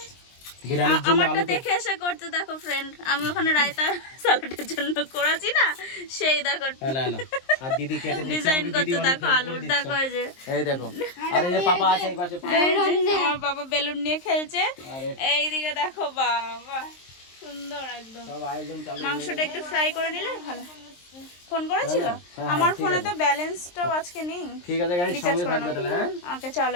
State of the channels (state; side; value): late; right; 23 ms